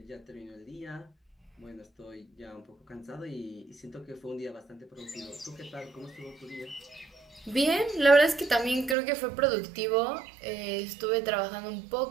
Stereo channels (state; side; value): drops out; left; at 9.0 s